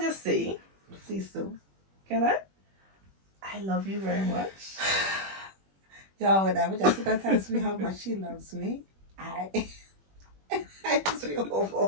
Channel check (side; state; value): left; late; 21 ms